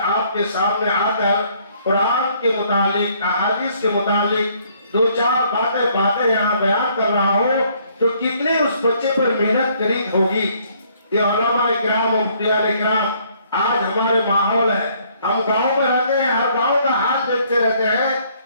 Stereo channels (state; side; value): inverted; both; correlation -0.64